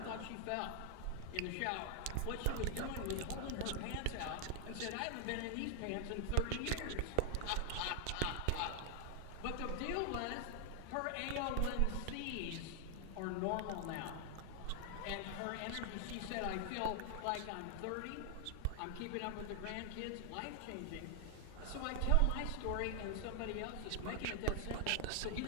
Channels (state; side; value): different; both; correlation 0.00